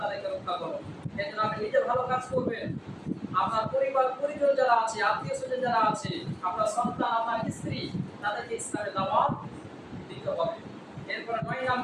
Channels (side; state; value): both; identical; correlation 1.00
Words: রক্ষা করো। এজন্য আপনি নিজে ভালো কাজ করবেন, আপনার পরিবার পরিজন যারা আছে, আত্মীয় স্বজন যারা আছে, আপনার সন্তান, আপনার স্ত্রী, তাদেরকে ইসলামের দাওয়াত দিতে হবে। এরপর 9